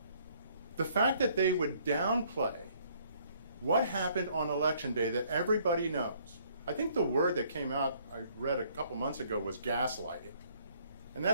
The fact that they would downplay what happened on Election Day that everybody knows. I think the word that came out, I read a couple months ago, was gaslighting. And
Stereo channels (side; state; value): both; inverted; correlation -0.63